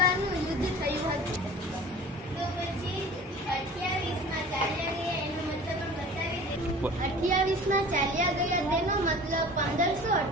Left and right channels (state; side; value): normal; both; correlation 0.42